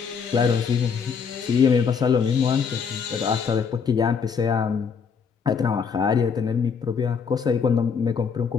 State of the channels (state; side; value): quieter; right; 6.2 dB